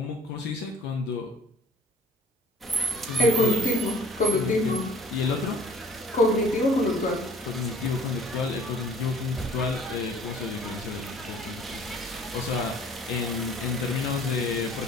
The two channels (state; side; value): normal; both; correlation 0.52